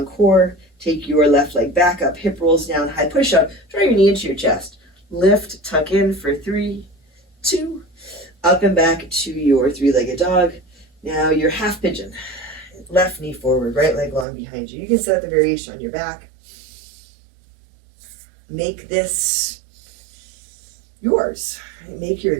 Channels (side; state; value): left; drops out; at 14.2 s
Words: core. Take your left leg back up, hip rolls down, high push up. Draw your knee into your chest. Lift, tuck in for 3, 2, up and back to your three-legged dog. Now your half pigeon. Left knee forward, right leg long behind you. You can set the variation on your back. Make this yours. Make your